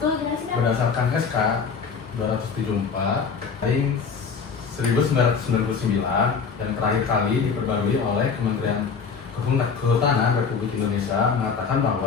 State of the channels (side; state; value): right; quieter; 5.8 dB